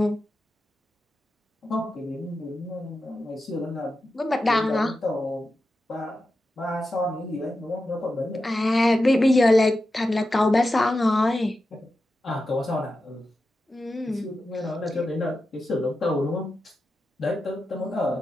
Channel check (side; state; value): both; normal; correlation 0.91